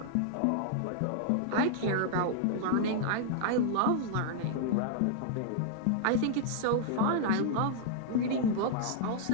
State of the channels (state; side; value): different; both; correlation 0.00